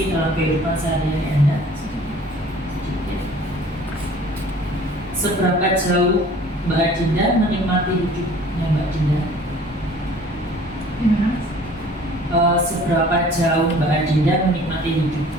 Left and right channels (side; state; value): both; normal; correlation 0.50